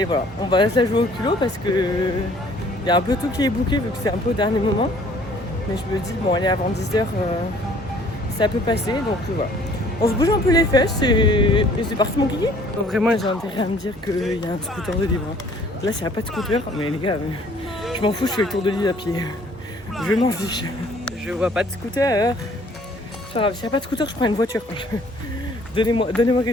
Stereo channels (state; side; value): normal; both; correlation 0.57